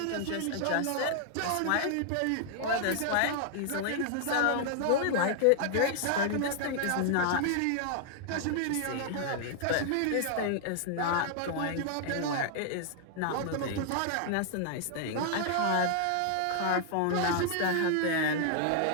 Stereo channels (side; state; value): both; different; correlation 0.00